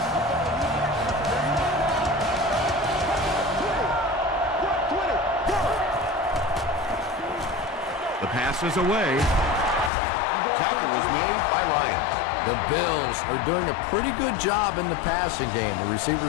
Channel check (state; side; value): drops out; right; at 9.9 s